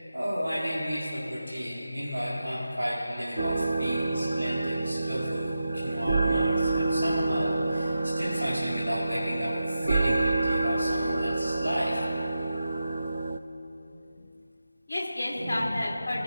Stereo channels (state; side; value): inverted; both; correlation -0.91